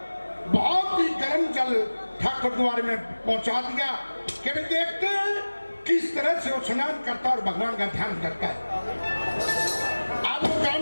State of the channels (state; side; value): inverted; both; correlation -1.00